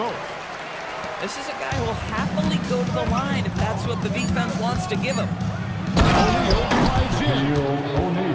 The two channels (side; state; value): both; identical; correlation 1.00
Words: This is a guy who will happily go to the line if that's what the defense wants to give him. O'Neal drives in.